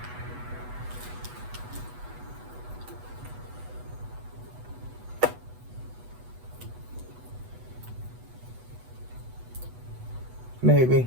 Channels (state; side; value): late; left; 8.1 ms